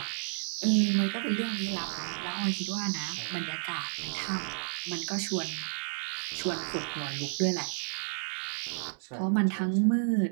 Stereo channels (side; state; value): left; silent; 55 dB below the other